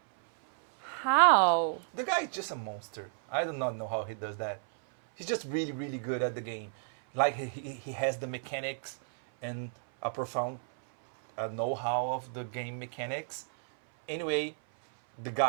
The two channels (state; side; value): silent; left; 56 dB below the other